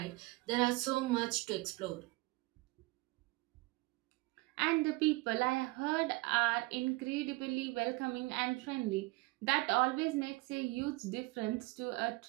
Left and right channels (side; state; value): left; quieter; 22.4 dB